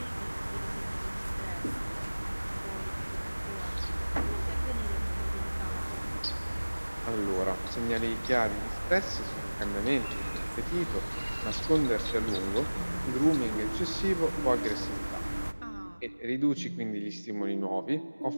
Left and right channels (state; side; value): inverted; both; correlation -1.00